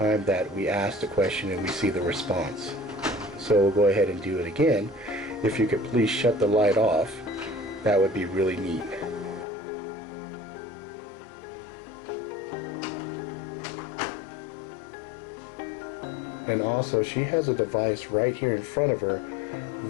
that we ask the question and we see the response. So we'll go ahead and do it again. If you could please shut the light off, that would be really neat. And also, she has a device right here in front of her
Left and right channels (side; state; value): right; drops out; at 9.5 s